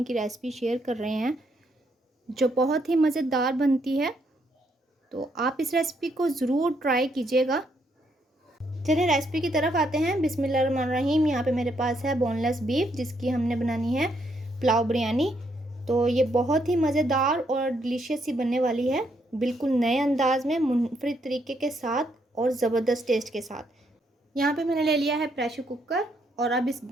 की रेसिपी शेयर कर रहे हैं जो बहुत ही मज़ेदार बनती है। तो आप इस रेसिपी को ज़रूर ट्राई कीजिएगा। चलिए रेसिपी की तरफ आते हैं। बिस्मिल्लाहिर्रहमानिर्रहीम। यहाँ पे मेरे पास है बोनलेस बीफ जिसकी हमने बनानी है पुलाव बिरयानी। तो ये बहुत ही मज़ेदार और डिलीशियस सी बनने वाली है, बिल्कुल नए अंदाज में, मुनफरिद तरीके के साथ और ज़बरदस्त टेस्ट के साथ। यहाँ पे मैंने ले लिया है प्रेशर कुकर और अब इस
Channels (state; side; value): normal; both; correlation 0.74